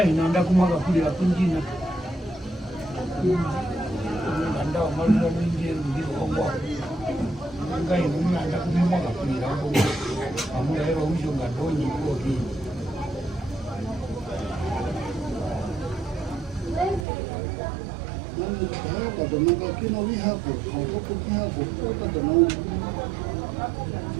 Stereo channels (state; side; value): drops out; left; at 17.1 s